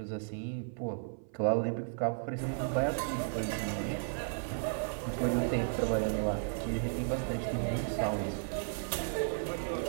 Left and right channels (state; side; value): silent; left; 55 dB below the other